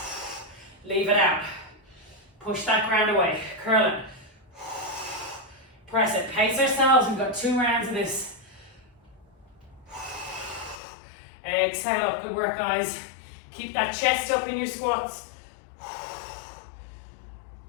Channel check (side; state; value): right; drops out; at 10.8 s